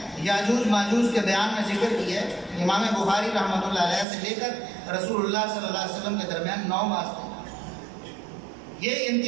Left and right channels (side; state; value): left; drops out; at 4.0 s